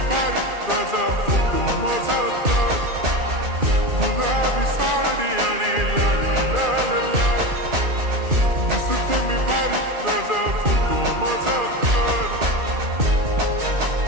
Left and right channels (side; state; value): left; late; 2.5 ms